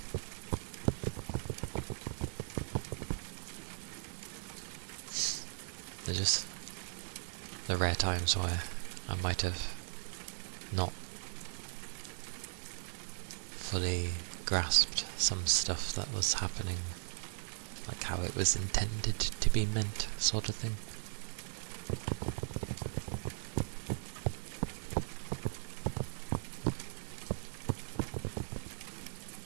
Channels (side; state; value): left; silent; digital silence